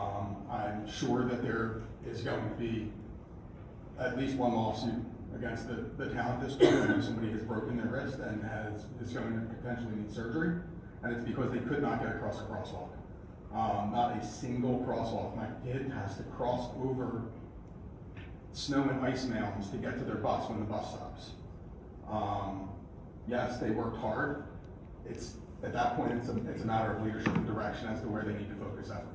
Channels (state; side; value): identical; both; correlation 1.00